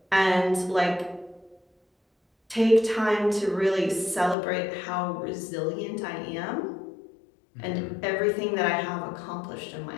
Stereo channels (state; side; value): drops out; right; at 4.4 s